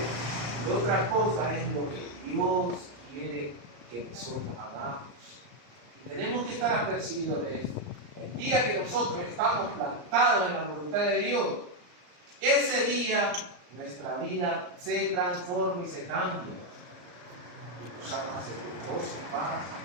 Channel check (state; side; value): late; left; 34 ms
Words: otra cosa es lo que Dios quiere que nosotros hagamos. Y tenemos que estar apercibidos de esto. El día que nosotros estamos plantados en la voluntad de Dios, ese día nuestra vida se transforma y se cambia. Empezamos a sentir gozo, paz,